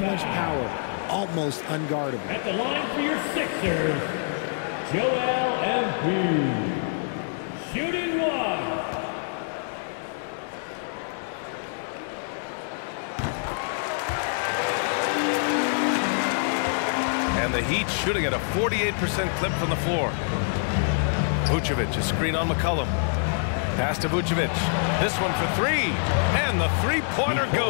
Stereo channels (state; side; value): silent; right; 61 dB below the other